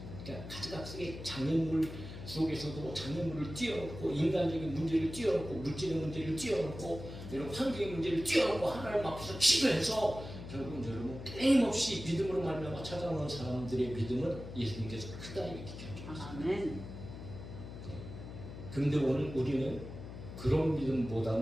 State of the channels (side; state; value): left; noise; hum, 11 dB below the sound